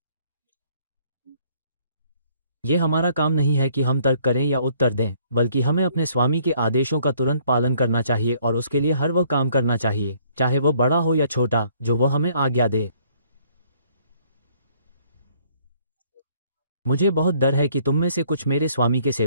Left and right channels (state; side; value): inverted; both; correlation -0.63